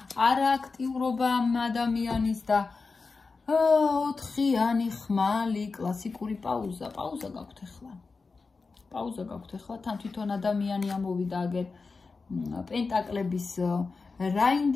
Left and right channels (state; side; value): quieter; right; 4.3 dB